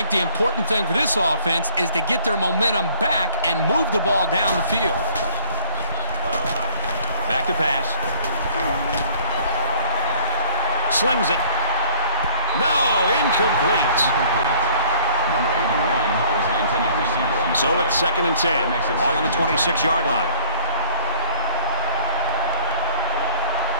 the important thing for this offense is to get their momentum back and move the ball down the field. Back to pass. Slings it. No, incomplete. Number 81 was the intended receiver on the So play. it's 2nd and 10. All on the 26-yard line.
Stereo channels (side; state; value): both; inverted; correlation -0.45